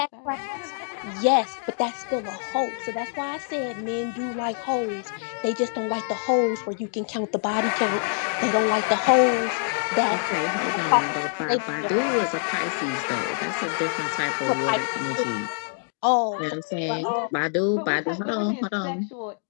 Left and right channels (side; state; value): right; silent; digital silence